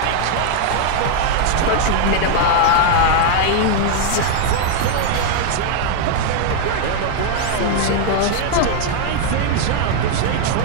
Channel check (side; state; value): both; different; correlation 0.00